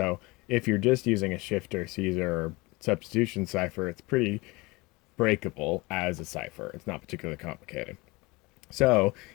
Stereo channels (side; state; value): right; quieter; 24.0 dB